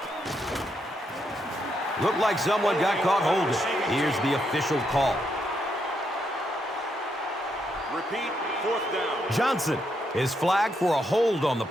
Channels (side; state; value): both; normal; correlation 0.79